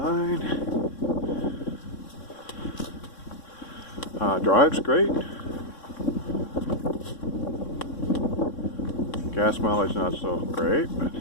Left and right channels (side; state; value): right; late; 3.6 ms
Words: drives great. Gas mileage not so great, but